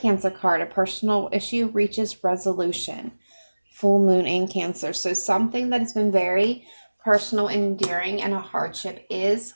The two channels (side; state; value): both; inverted; correlation -1.00